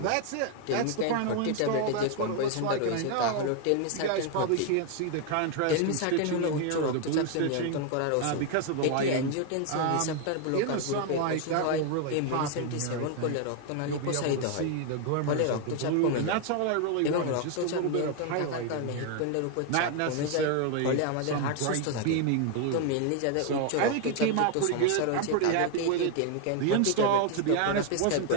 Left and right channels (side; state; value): both; different; correlation 0.01